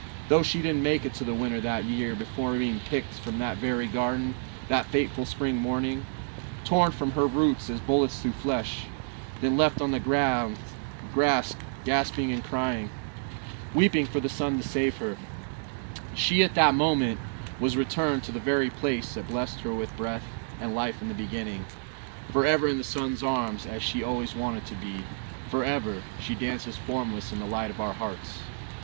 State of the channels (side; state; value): left; silent; digital silence